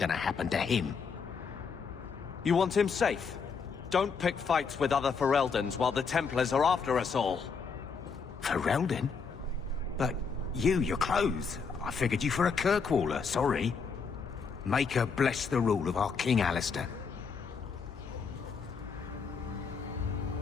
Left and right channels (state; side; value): quieter; right; 5.5 dB